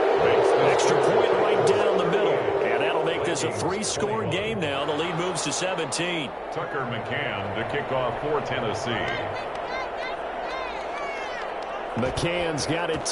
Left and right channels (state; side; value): identical; both; correlation 1.00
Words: Extra point right down the middle. And that'll make this a 3-score game now. The lead moves to 17. Tucker McCann to kick off for Tennessee. McCann's got it